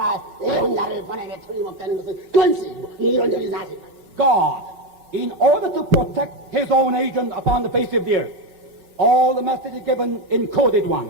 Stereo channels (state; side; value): late; left; 5.0 ms